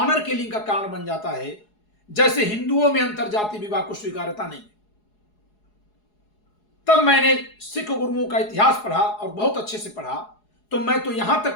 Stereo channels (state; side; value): late; right; 4.8 ms